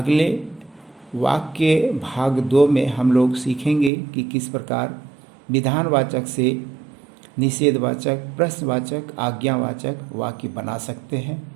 वाक्य भाग 2 में हम लोग सीखेंगे कि किस प्रकार विधानवाचक से निषेधवाचक, प्रश्नवाचक, आज्ञावाचक वाक्य बना सकते हैं।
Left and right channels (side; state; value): left; drops out; at 3.9 s